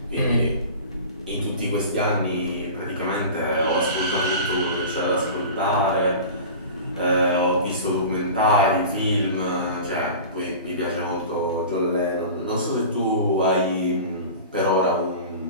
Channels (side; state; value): both; inverted; correlation -0.35